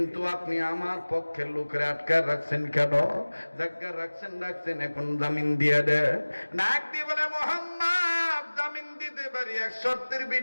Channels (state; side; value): inverted; both; correlation -1.00